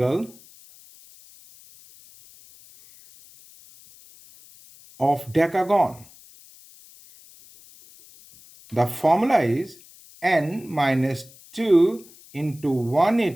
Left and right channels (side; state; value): left; noise; hiss, 24 dB below the sound